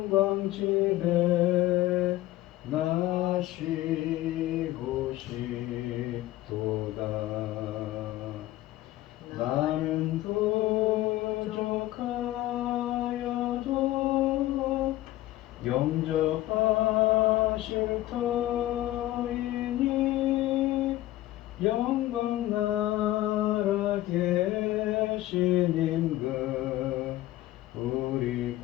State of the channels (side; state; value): right; quieter; 15.8 dB